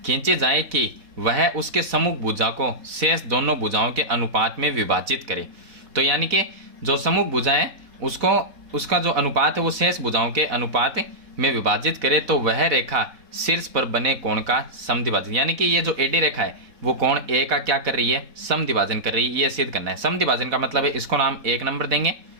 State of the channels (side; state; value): left; late; 4.1 ms